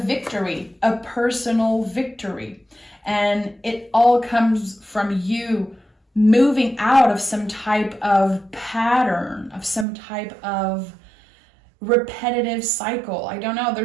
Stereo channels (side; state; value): left; drops out; at 9.9 s